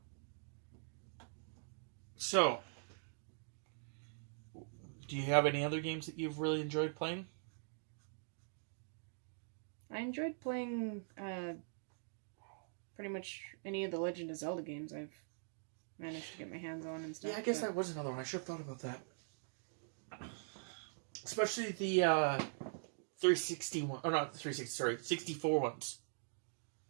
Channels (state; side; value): silent; left; digital silence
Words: So, do you have any other games that you've really enjoyed playing? I enjoyed playing pretty much any of the Legend of Zelda games I've managed to get my hands on and stuff. Yeah, I guess that was another one. I should have thought about that. Especially the 360 one. Oh, not the 360, sorry. 64 ones.